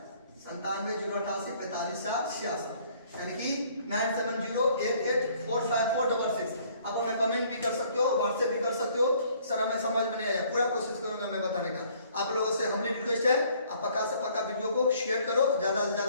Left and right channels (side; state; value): both; inverted; correlation -0.60